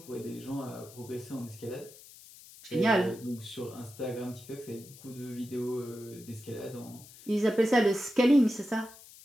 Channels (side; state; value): left; noise; hiss, 20 dB below the sound